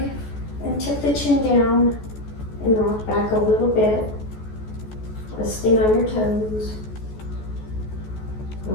and tip the chin down and rock back a little bit. Resting on your toes.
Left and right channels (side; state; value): right; late; 14 ms